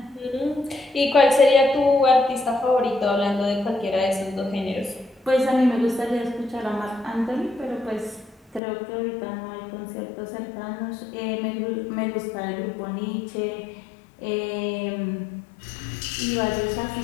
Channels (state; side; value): drops out; right; at 8.6 s